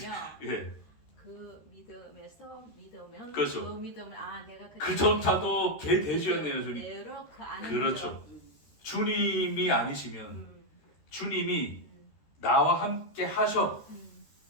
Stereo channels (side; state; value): right; late; 13 ms